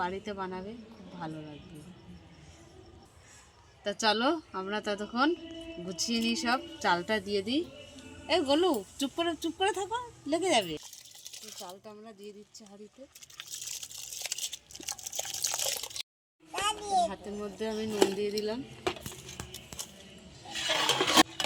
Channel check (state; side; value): identical; both; correlation 1.00